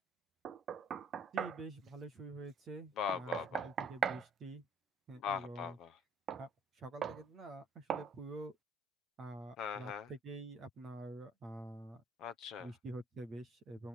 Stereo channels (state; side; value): normal; both; correlation 0.58